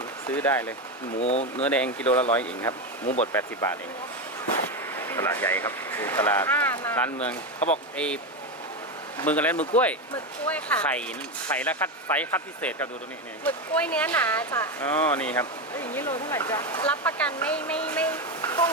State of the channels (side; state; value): both; normal; correlation 0.13